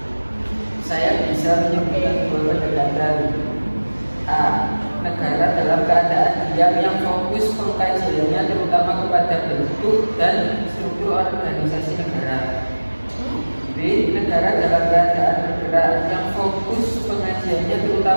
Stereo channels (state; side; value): inverted; both; correlation -1.00